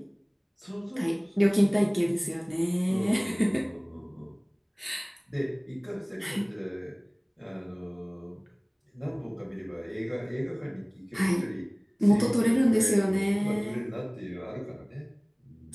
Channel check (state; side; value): identical; both; correlation 1.00